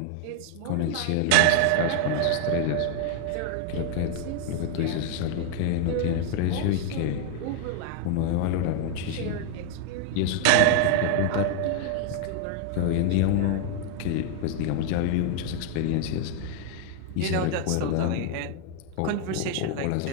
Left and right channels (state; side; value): different; both; correlation 0.00